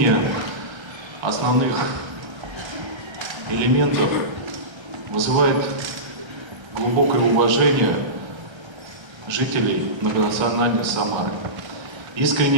основных элементов вызывает глубокое уважение жителей многонациональной Самары.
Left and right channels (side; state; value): left; late; 1.3 ms